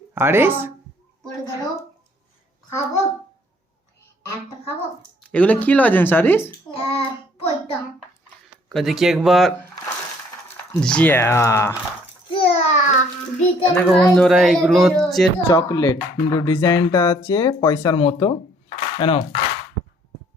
আরিস? পড়ে গেল। খাবো, একটা খাবো। এগুলো কি লজেন্স আরিস? পয়টা দেখি একবার। জিয়া দেখো বন্ধুরা, এগুলো হচ্ছে চকলেট, কিন্তু ডিজাইনটা আছে পয়সার মতো। কেন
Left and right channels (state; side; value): normal; both; correlation 0.61